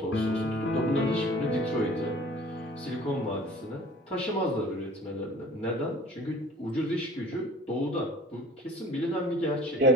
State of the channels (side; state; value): both; normal; correlation 0.46